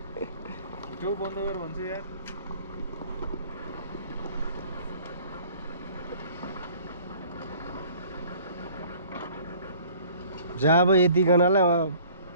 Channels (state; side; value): inverted; both; correlation -0.52